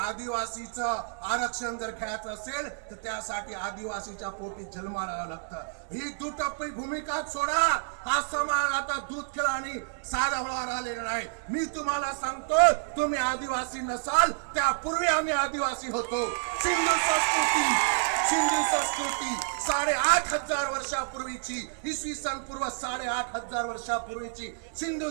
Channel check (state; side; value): silent; left; digital silence